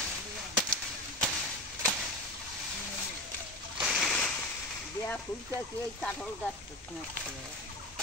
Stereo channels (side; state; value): both; normal; correlation 0.25